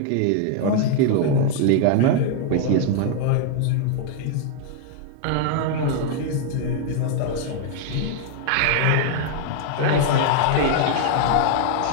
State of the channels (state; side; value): different; both; correlation 0.00